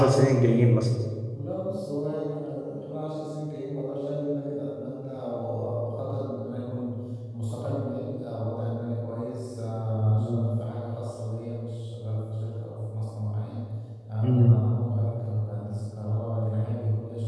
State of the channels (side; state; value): both; identical; correlation 1.00